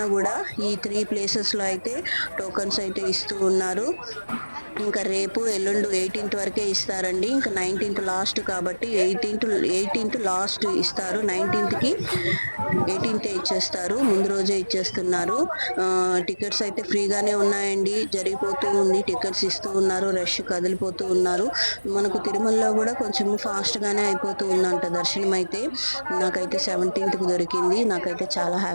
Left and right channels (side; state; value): both; inverted; correlation -1.00